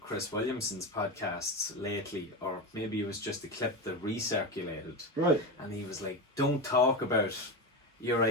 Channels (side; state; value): both; normal; correlation 0.19